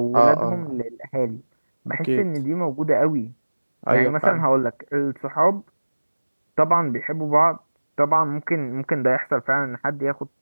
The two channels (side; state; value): both; inverted; correlation -1.00